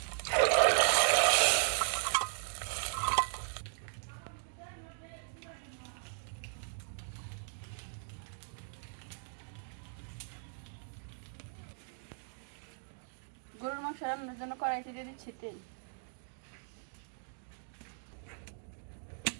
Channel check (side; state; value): left; silent; digital silence